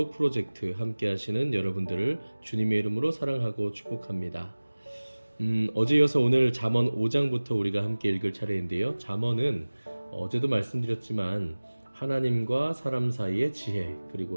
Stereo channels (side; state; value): both; inverted; correlation -1.00